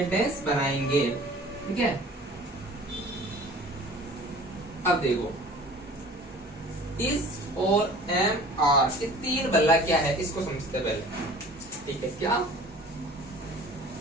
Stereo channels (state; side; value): normal; both; correlation 0.46